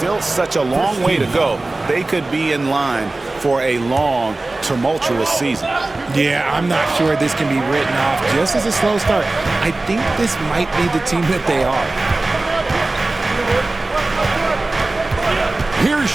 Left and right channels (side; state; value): left; quieter; 3.0 dB